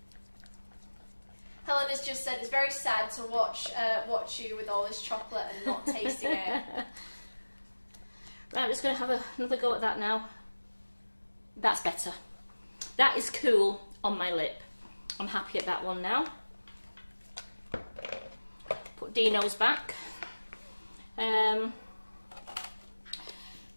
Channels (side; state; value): both; inverted; correlation -1.00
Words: Helen has just said it's very sad to watch you with all this chocolate and not tasting it. Right, I'm just going to have another go at that now. That's better. That is cool on my lip. I'm happy at that one now. Put Dino's back.